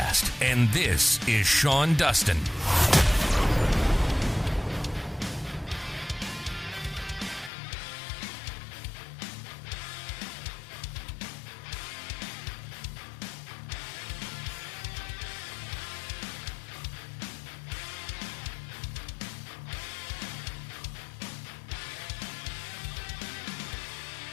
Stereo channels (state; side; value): drops out; right; at 7.5 s